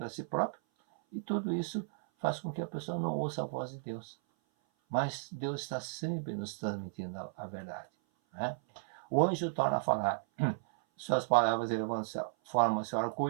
si própria. E tudo isso faz com que a pessoa não ouça a voz de Deus. Mas Deus está sempre nos transmitindo a verdade. Né? O anjo torna a falar, suas palavras formam-se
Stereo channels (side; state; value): left; silent; 55 dB below the other